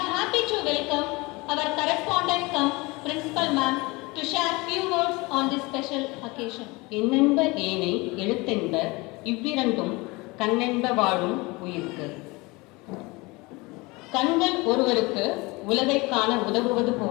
happy to welcome our correspondent cum principal ma'am to share few words on this special occasion. என்னென்ப ஏனை எழுத்தென்ப இவ்விரண்டும் கண்ணென்ப வாழும் உயிர்க்கு. கண்கள் ஒருவருக்கு உலகை காண உதவுவது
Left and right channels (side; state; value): right; quieter; 24.3 dB